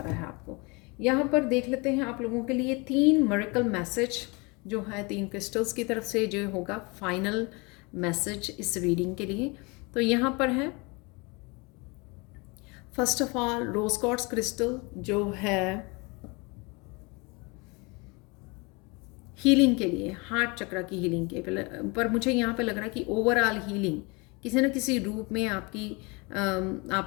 है आपको। यहाँ पर देख लेते हैं आप लोगों के लिए 3 मिरेकल मैसेज जो है 3 क्रिस्टल्स की तरफ से जो होगा फाइनल मैसेज इस रीडिंग के लिए। तो यहाँ पर है first of all rose quartz crystal जो है हीलिंग के लिए, हार्ट चक्र की हीलिंग के पर मुझे यहाँ पे लग रहा है कि ओवरऑल हीलिंग किसी न किसी रूप में आपकी आप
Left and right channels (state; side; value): quieter; right; 28.1 dB